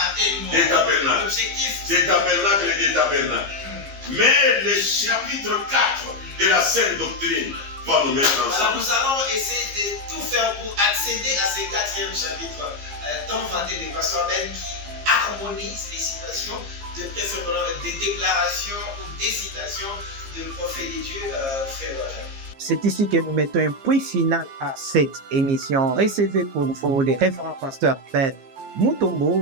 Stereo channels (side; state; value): left; late; 15 ms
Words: tellement. Des tabernacles. L'objectif. Des tabernacles et des tabernacles. Mais le chapitre 4 de la Sainte Doctrine va nous mettre ensemble. Voilà, nous allons essayer de tout faire pour accéder à ce 4e chapitre tant vanté de Pasteur Ben qui harmonise les citations, de préférence des déclarations ou des citations de prophètes de Dieu, frère. C'est ici que nous mettons un point final à cette émission. Recevez pour vous les référents Pasteur Ben